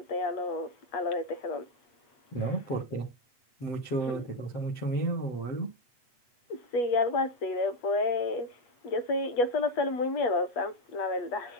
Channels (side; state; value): right; late; 8.3 ms